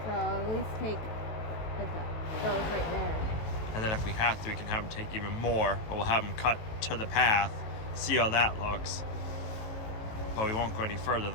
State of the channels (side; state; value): right; late; 18 ms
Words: at least take those right there. And then if we have to, we can have them take even more, but we'll have them cut to the path, see how that looks. But we won't go any further